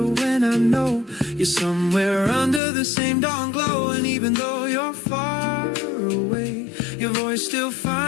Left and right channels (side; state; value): right; drops out; at 2.6 s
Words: when I know you're somewhere under the same dawn glow. And even though you're far away, your voice still